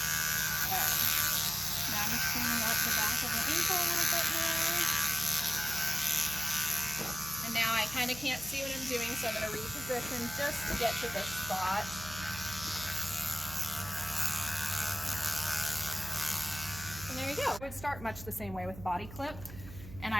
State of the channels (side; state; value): right; noise; hum, 14 dB below the sound